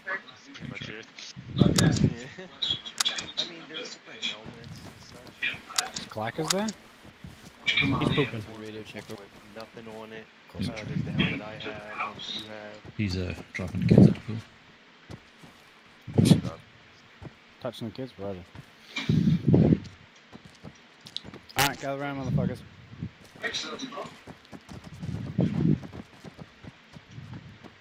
pretty much it. Yeah. I mean, there's different helmets and such. Clackers there? He's pooping. Radio checker. With nothing on it. There's the helmet I have, one that you have. He's dropping the kids at the pool. Touching the kids, brother. Alright, gather around, motherfuckers.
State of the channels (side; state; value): both; identical; correlation 1.00